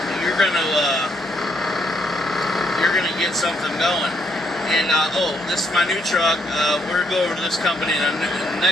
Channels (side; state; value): both; normal; correlation 0.72